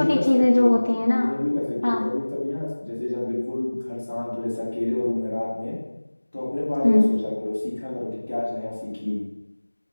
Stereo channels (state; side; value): inverted; both; correlation -1.00